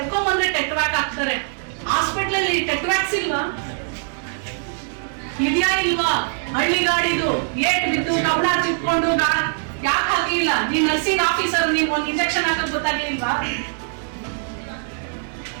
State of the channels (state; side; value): silent; left; digital silence